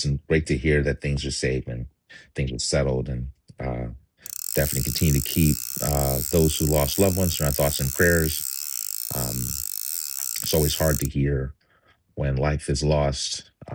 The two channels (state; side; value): identical; both; correlation 1.00